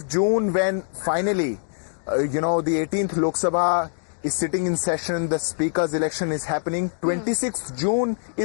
June, when finally, the 18th Lok Sabha is sitting in session, the speaker's election is happening. 26th June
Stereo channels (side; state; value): right; silent; digital silence